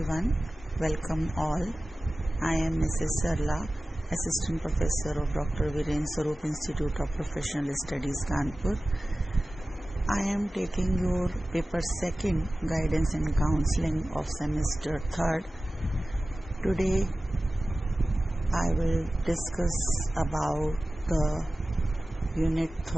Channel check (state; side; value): normal; both; correlation 0.96